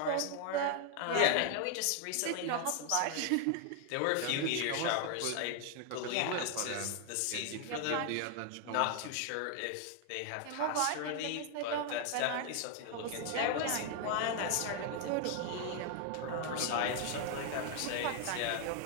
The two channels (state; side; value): different; both; correlation 0.00